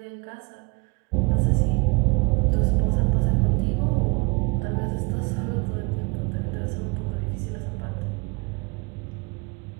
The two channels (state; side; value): quieter; left; 29.1 dB